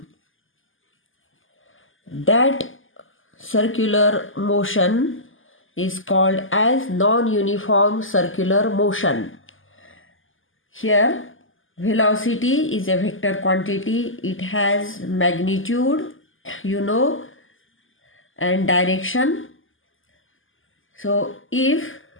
that circular motion is called as non-uniform circular motion. Here velocity is a vector quantity. It has magnitude, and direction. So if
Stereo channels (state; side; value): late; right; 0.58 ms